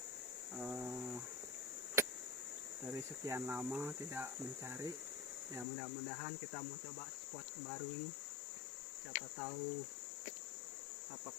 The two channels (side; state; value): right; drops out; at 5.7 s